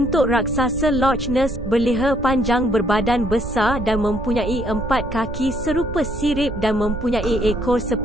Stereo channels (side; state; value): right; noise; rumble, 7 dB below the sound